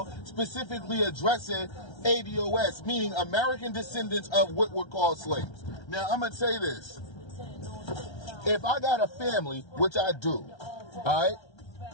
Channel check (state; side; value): late; right; 1.3 ms